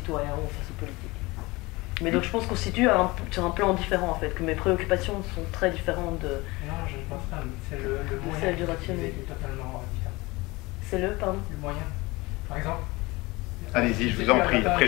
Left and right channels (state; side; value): quieter; right; 22.7 dB